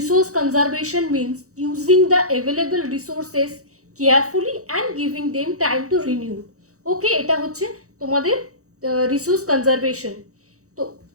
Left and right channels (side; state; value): left; late; 0.65 ms